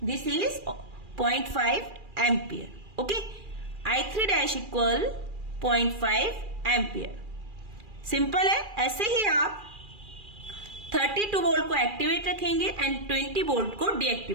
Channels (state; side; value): late; left; 2.4 ms